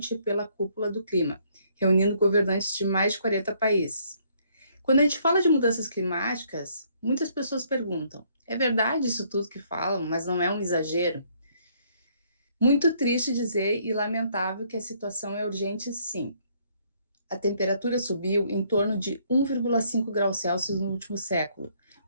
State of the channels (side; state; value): both; inverted; correlation -0.67